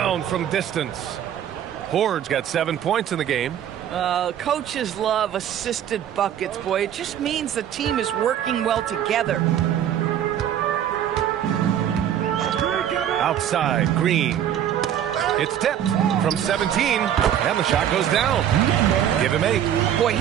from distance. Horde's got 7 points in the game. Coaches love assisted buckets, boy. It just means the team is working well together. Outside, Green. It's tipped from 17, and the shot goes down. Give him 8. Boy,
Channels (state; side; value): quieter; left; 10.2 dB